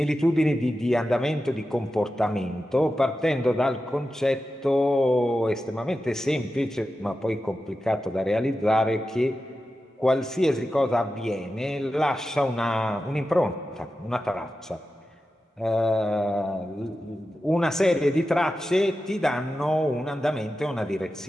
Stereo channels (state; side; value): normal; both; correlation 0.92